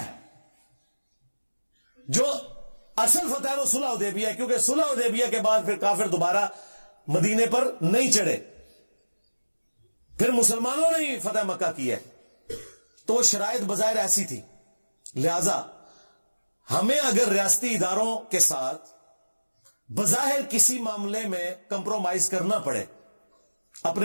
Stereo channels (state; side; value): inverted; both; correlation -1.00